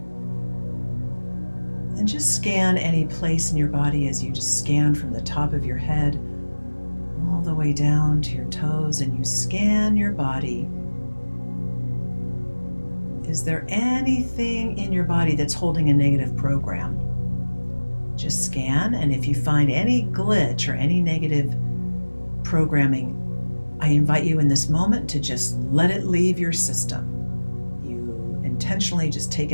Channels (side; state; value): both; inverted; correlation -1.00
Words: And just scan any place in your body as you just scan from the top of your head all the way down to your toes, and you scan your body. Is there anything in your body that's holding a negative program? Just scan, and if you find any glitch or any negative programming, I invite you in this moment to just let it leave your system. You intentionally just take